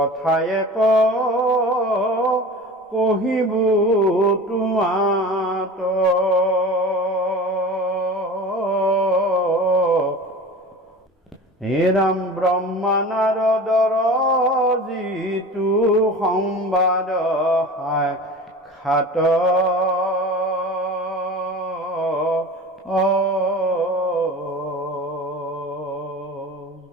কহিব তোমাত হে ৰাম ব্ৰহ্মা নাৰদৰ যিটো সংবাদ সাক্ষাৎ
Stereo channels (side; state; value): both; normal; correlation 0.35